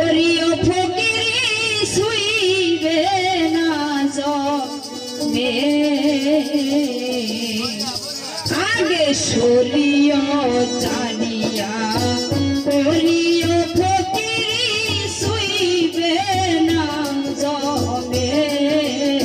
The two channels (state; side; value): identical; both; correlation 1.00